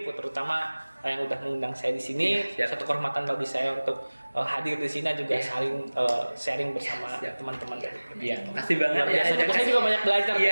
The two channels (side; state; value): both; inverted; correlation -1.00